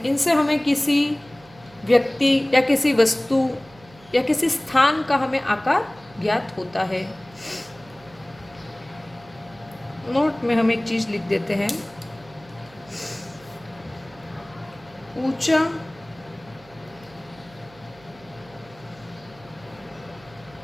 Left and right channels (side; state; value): right; noise; hum, 25 dB below the sound